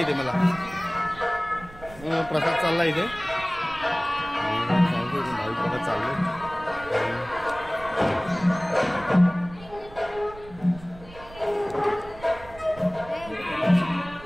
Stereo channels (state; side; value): noise; right; rumble, 19 dB below the sound